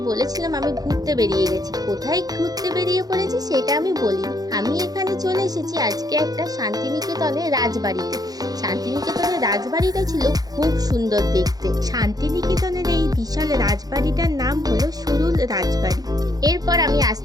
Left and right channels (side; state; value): left; late; 0.18 ms